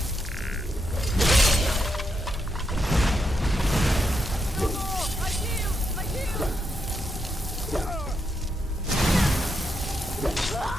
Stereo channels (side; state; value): both; normal; correlation 0.81